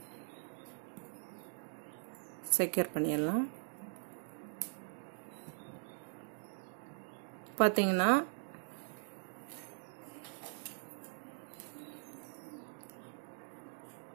செக்யூர் பண்ணிடலாம். பார்த்தீங்கன்னா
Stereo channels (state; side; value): silent; left; digital silence